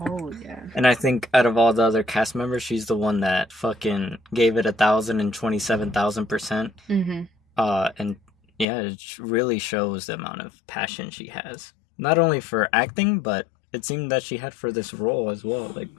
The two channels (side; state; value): right; drops out; at 8.7 s